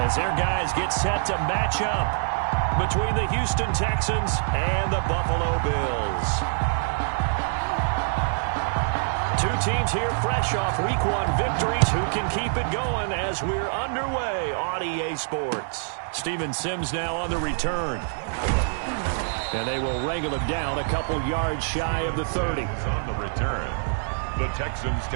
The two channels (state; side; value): silent; left; digital silence